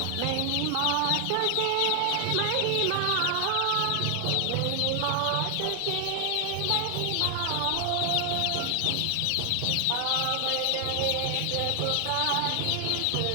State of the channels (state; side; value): different; both; correlation 0.00